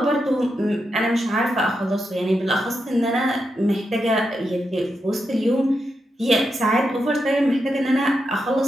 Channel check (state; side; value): normal; both; correlation 0.86